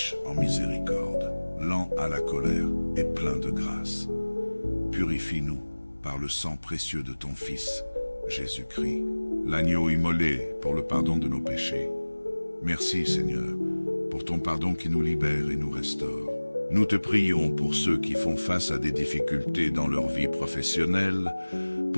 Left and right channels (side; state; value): both; inverted; correlation -1.00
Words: en miséricorde, lent à la colère et plein de grâce. Purifie-nous par le sang précieux de ton Fils, Jésus-Christ, l'agneau immolé pour le pardon de nos péchés. Merci Seigneur, pour ton pardon qui nous libère et nous restaure. Nous te prions pour ceux qui font face à des difficultés dans leur vie professionnelle,